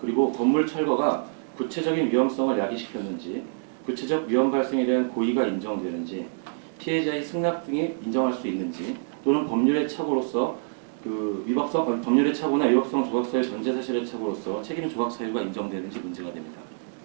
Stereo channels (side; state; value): left; silent; digital silence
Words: 건물 철거가 구체적인 위험성을 야기시켰는지, 구체적 위험 발생에 대한 고의가 인정되는지, 피해자의 승낙 등이 인정할 수 있는지, 또는 법률의 착오로서 법률의 착오나 위법성 조각서의 전제 사실의 착오로서 책임 조각 사유가 인정되는지 문제가 됩니다.